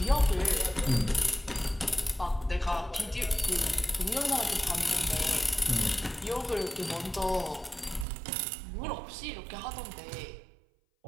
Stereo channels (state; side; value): drops out; left; at 8.1 s